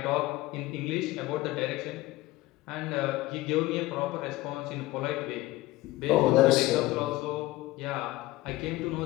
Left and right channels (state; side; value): quieter; right; 18.3 dB